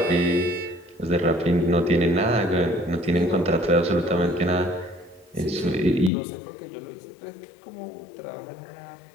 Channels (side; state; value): right; drops out; at 6.1 s